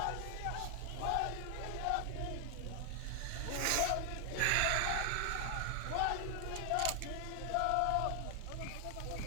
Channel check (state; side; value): different; both; correlation 0.00